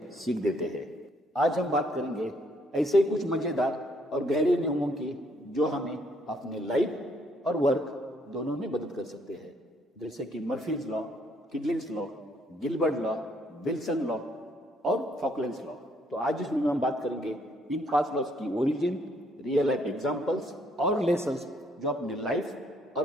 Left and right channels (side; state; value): both; normal; correlation 0.68